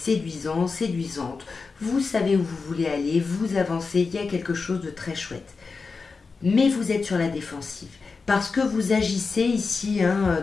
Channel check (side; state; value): right; quieter; 4.5 dB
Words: séduisante, vous savez où vous voulez aller, vous avancez, il y a quelque chose de très chouette. Mais vous êtes sur la défensive, parce que vous agissez ici